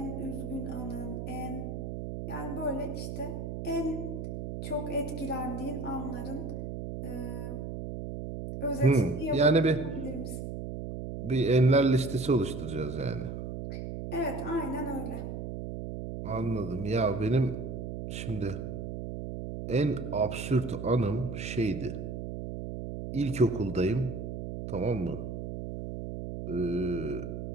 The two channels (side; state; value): right; noise; hum, 6 dB below the sound